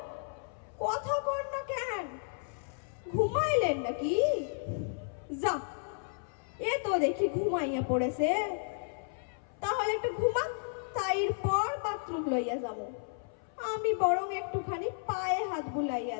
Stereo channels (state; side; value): silent; right; 56 dB below the other